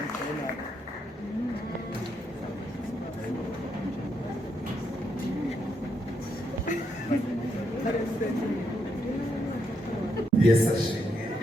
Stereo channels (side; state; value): both; normal; correlation 0.78